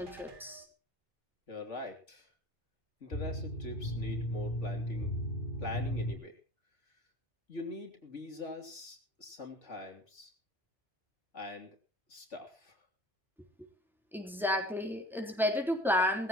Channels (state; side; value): normal; both; correlation 0.43